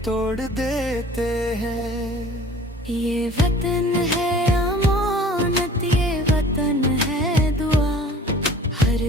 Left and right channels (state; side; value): normal; both; correlation 0.47